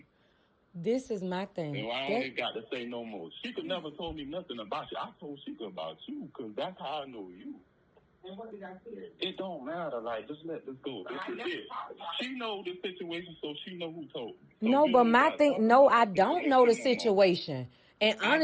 This is my thing. And I only got to say no more. Shashicka never told me nothing about you. I told Shashicka about you, because that's how I know you. And what did I say? It don't matter. Like, just let this go. This is it. She know the situation, so she know who told me. So no, but my thing, no, I don't know the situation. And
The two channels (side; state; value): both; identical; correlation 1.00